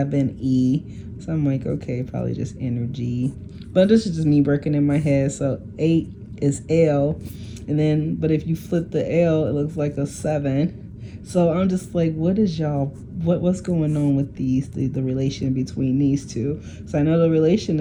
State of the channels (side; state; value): both; identical; correlation 1.00